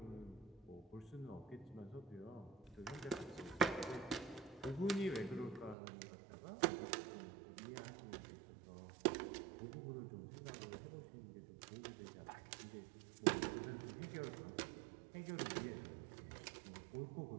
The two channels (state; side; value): drops out; left; at 5.8 s